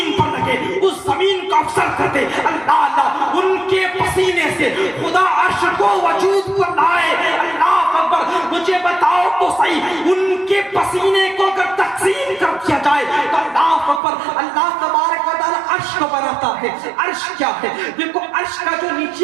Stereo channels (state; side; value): drops out; left; at 14.0 s